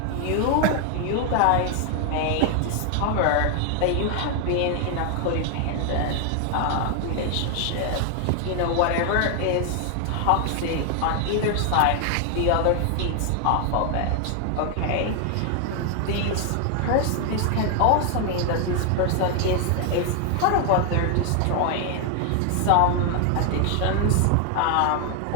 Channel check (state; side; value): different; both; correlation 0.00